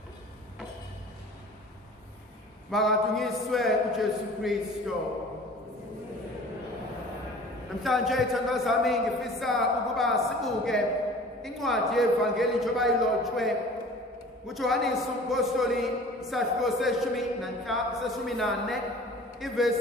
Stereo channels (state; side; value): normal; both; correlation 0.44